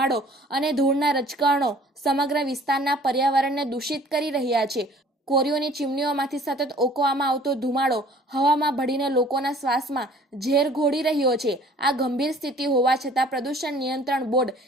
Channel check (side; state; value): both; normal; correlation 0.52